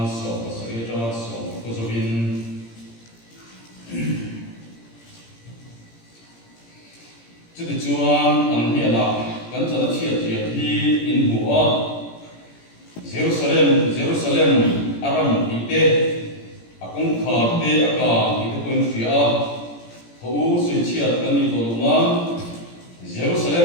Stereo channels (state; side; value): late; right; 17 ms